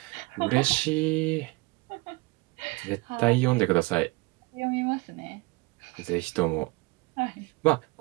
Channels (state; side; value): quieter; left; 23.9 dB